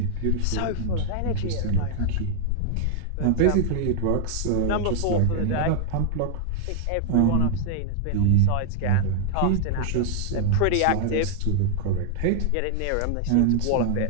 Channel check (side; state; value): both; different; correlation 0.00